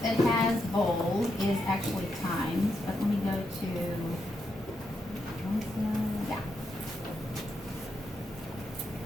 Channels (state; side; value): normal; both; correlation 0.82